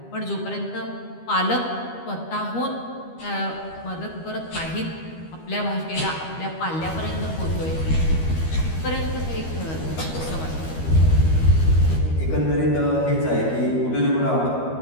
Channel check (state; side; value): late; right; 13 ms